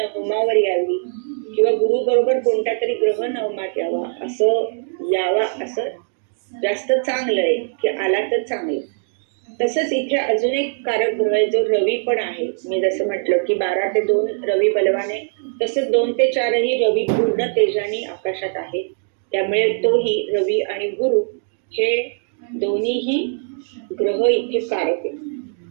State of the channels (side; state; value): left; silent; 59 dB below the other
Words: यावी किंवा गुरु बरोबर कोणता तरी ग्रह नवमात यावा असं जास्त चांगलं आहे की आला तर चांगलं. तसंच इथे अजून एक कारक ग्रह आहे जो रवी पण आहे. मी जसं म्हटलं की 12 ते 2 रवी बलवान आहे, तसंच 2 ते 4 ही रवी पूर्ण तेजाने आकाशात आहे. त्यामुळे तोही रवी आणि गुरु हे दोन्हीही ग्रह इथे कारक आहे.